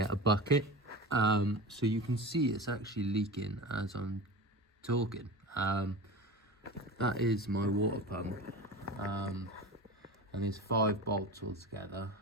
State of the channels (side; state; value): both; normal; correlation 0.30